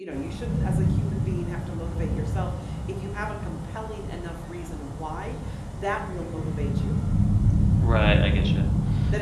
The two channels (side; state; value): both; identical; correlation 1.00